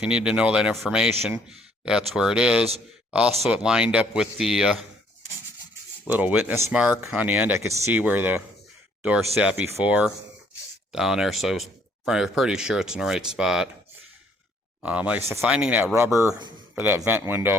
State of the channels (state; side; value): normal; both; correlation 0.64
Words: you need to know that information, that's where it is. Also, it lined up with the little witness mark on the end. I could see where the door sat before down there, so I was pretty sure it's in the right spot. Like I said, finding that rubber for that vent